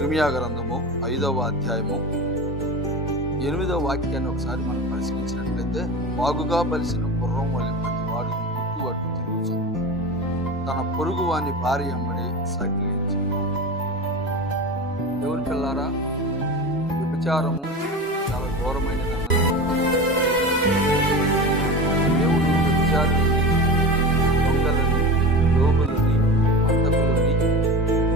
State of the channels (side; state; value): both; normal; correlation 0.28